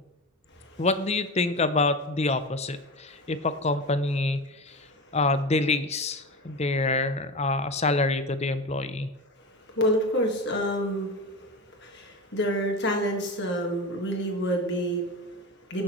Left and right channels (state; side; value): normal; both; correlation 0.25